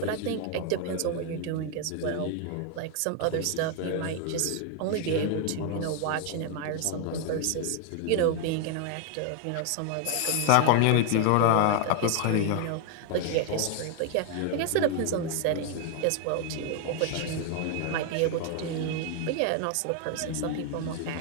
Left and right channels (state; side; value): different; both; correlation 0.00